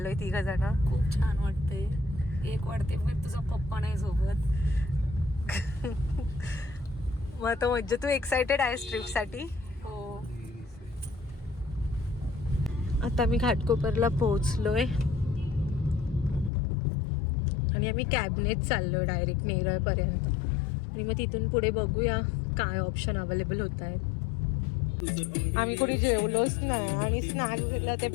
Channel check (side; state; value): right; drops out; at 16.5 s